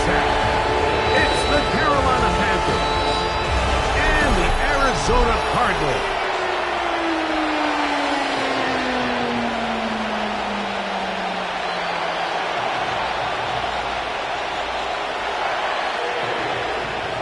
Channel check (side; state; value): both; identical; correlation 1.00